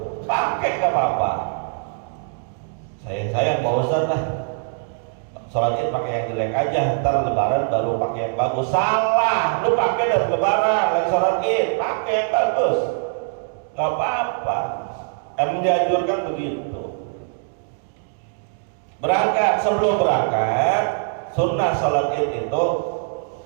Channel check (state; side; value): silent; left; 64 dB below the other